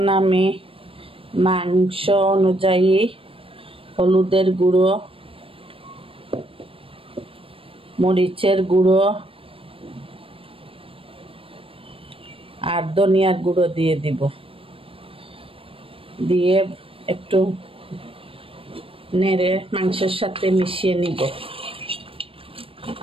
আমি মাংস অনুযায়ী হলুদের গুঁড়ো, মরিচের গুঁড়ো আর ধনিয়ার গুঁড়ো দিয়ে দিব। দিয়ে একটু নেড়ে মাংসের সাথে মিশিয়ে নিব।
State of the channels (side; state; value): left; late; 0.27 ms